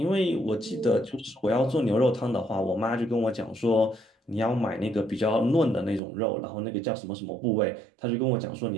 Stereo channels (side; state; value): left; drops out; at 6.0 s